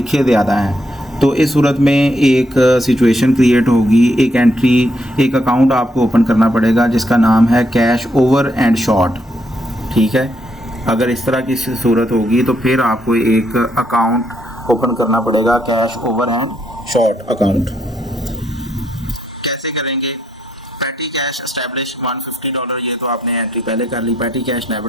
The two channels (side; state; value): both; normal; correlation 0.76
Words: ज़्यादा हैं। तो इस सूरत में एक सिचुएशन क्रिएट होगी, एक एंट्री, एक अकाउंट आपको ओपन करना पड़ेगा जिसका नाम है कैश ओवर एंड शॉर्ट। ठीक है, अगर इस तरह की सूरत होगी तो फिर आपको एक अकाउंट ओपन करना पड़ेगा, cash over and short account. कैसे करेंगे, पैटी कैश एस्टैब्लिश $150, ये तो आपने एंट्री पहले कर ली। पैटी कैश